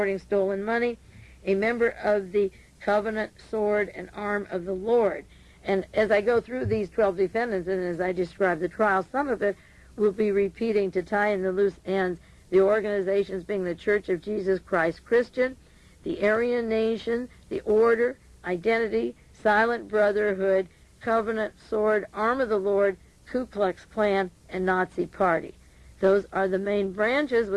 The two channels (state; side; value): identical; both; correlation 1.00